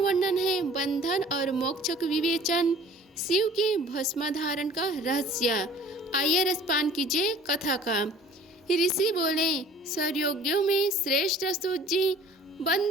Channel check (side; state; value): both; normal; correlation 0.49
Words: है बंधन और मोक्ष का विवेचन, शिव के भस्म धारण का रहस्य। आइए रसपान कीजिए कथा का। ऋषि बोले, सर्वयोगियों में श्रेष्ठ सूत जी,